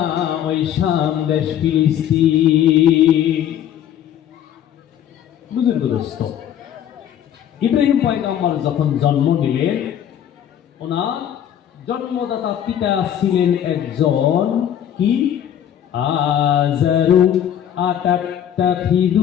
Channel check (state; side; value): quieter; right; 10.2 dB